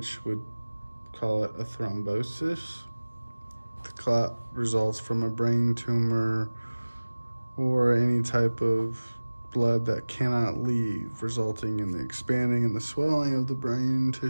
would call it a thrombosis. The clot results from a brain tumor or any type of blood that cannot leave, resulting in the expanding and the swelling of the brain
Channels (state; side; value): inverted; both; correlation -1.00